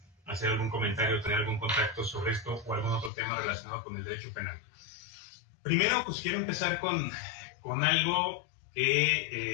hacer algún comentario o tener algún contacto sobre esto o algún otro tema relacionado con el derecho penal. Primero, pues quiero empezar con algo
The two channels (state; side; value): drops out; right; at 3.1 s